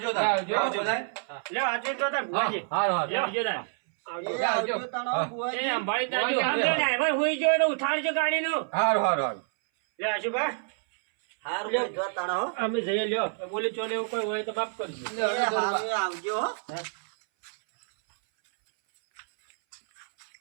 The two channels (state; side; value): silent; left; 59 dB below the other